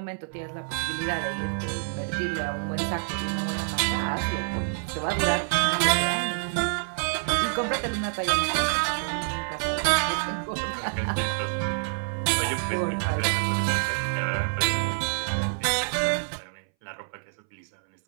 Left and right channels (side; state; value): left; silent; 60 dB below the other